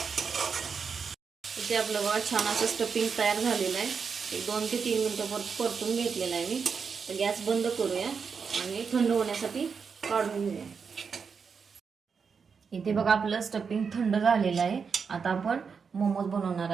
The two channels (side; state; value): left; quieter; 5.9 dB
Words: इथे आपलं बघा छान असं स्टफिंग तयार झालेलं आहे. एक 2 ते 3 मिनिटं परतून घेतलेलं आहे मी. तर गॅस बंद करूया आणि थंड होण्यासाठी काढून घेऊया. इथे बघा आपलं स्टफिंग थंड झालेलं आहे. आता आपण मोमोज बनवणार